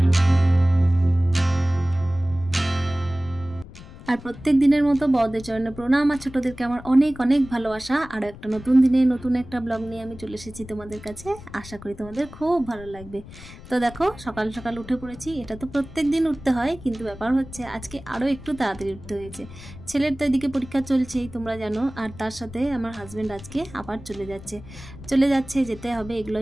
আর প্রত্যেক দিনের মতো বড়দের চরণে প্রণাম, আর ছোটদেরকে আমার অনেক অনেক ভালোবাসা। আর একটা নতুন দিনে নতুন একটা ব্লগ নিয়ে আমি চলে এসেছি তোমাদের কাছে। আশা করি তোমাদের খুব ভালো লাগবে। তো দেখো, সকাল সকাল উঠে পড়েছি। এটা তো প্রত্যেক দিন উঠতে হয়, কিন্তু ব্যাপার হচ্ছে আজকে আরও একটু তাড়াতাড়ি উঠতে হয়েছে। ছেলের তো এদিকে পরীক্ষা চলছেই, তোমরা জানো। আর তার সাথে আমার হাজব্যান্ড আজকে আবার চলে যাচ্ছে, যেতে হবে, এগুলো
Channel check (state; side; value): noise; left; rumble, 17 dB below the sound